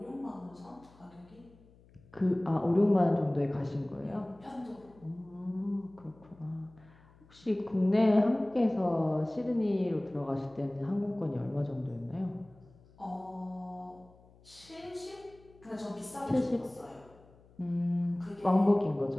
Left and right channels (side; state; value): left; noise; hum, 27 dB below the sound